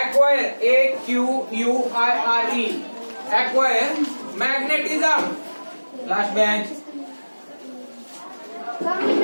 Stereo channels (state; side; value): inverted; both; correlation -1.00